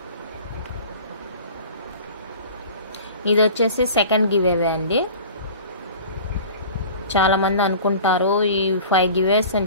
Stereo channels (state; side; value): inverted; both; correlation -0.41